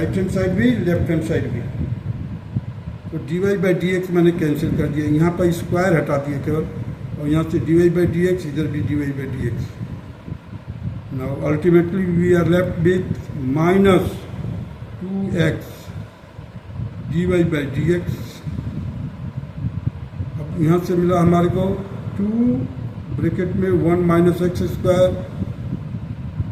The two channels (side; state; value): both; identical; correlation 1.00